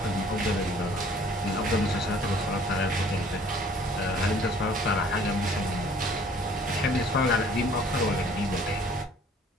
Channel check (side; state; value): both; normal; correlation 0.55